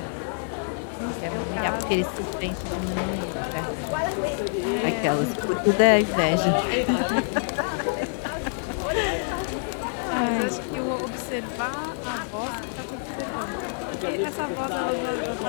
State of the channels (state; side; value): silent; right; digital silence